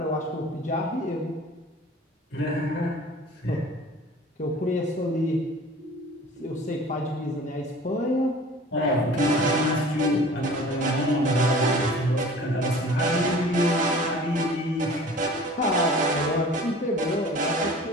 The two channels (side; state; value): both; normal; correlation 0.44